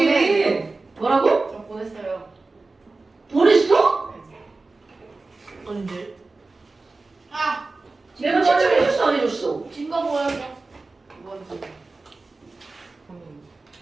뭐라고? 저 보냈어요. 보냈어? 언제? 아! 내가 채점해줬어 안 해줬어? 진거 보여줘. 뭔지.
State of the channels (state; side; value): quieter; left; 3.5 dB